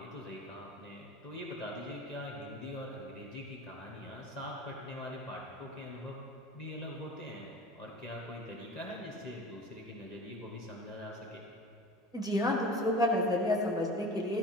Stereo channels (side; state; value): both; normal; correlation 0.38